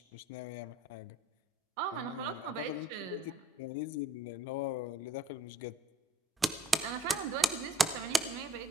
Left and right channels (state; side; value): normal; both; correlation 0.57